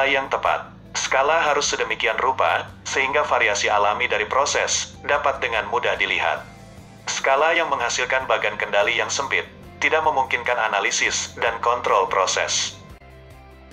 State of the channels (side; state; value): both; identical; correlation 1.00